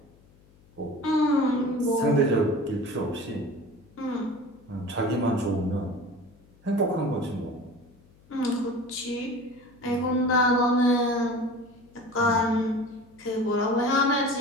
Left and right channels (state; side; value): noise; left; hum, 28 dB below the sound